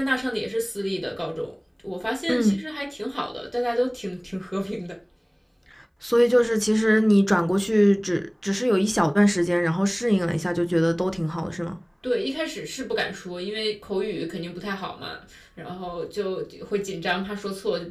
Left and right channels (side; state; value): both; identical; correlation 1.00